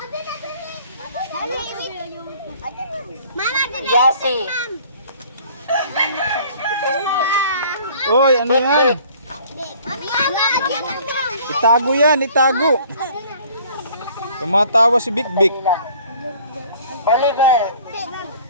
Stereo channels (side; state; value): both; inverted; correlation -0.53